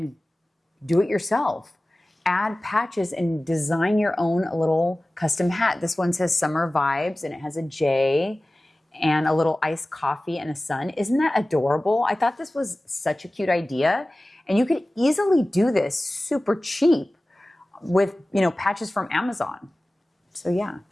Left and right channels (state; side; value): normal; both; correlation 0.97